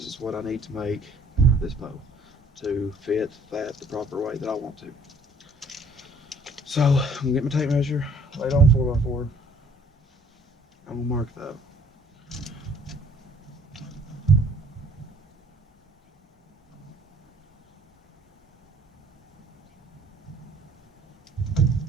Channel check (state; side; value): normal; both; correlation 0.58